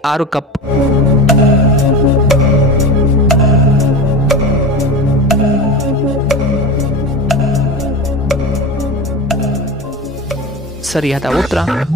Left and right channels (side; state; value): both; normal; correlation 0.26